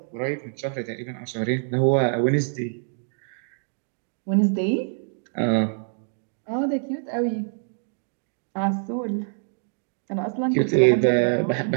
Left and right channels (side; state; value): left; silent; digital silence